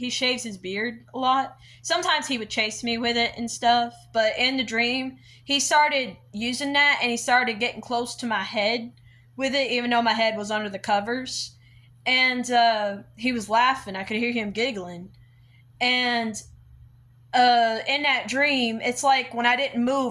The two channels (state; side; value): identical; both; correlation 1.00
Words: shaves his beard a lot. Sometimes he would chase me with it and stuff, but in the dream, he started using that and he started getting close to my head with it, even though my head was under the covers. And he was laughing. I could hear him giggling. And in that dream, it's like when I didn't